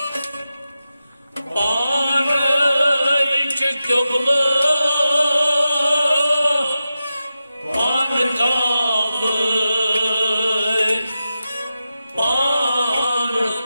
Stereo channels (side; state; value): both; inverted; correlation -0.91